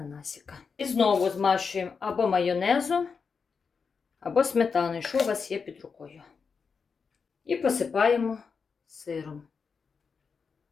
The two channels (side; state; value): right; quieter; 5.5 dB